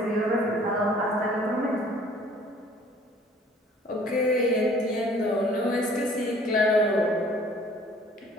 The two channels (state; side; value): normal; both; correlation 0.54